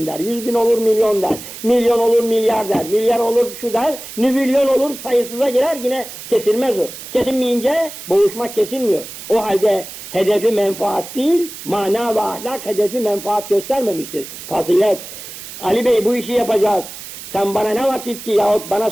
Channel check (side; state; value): right; noise; hiss, 12 dB below the sound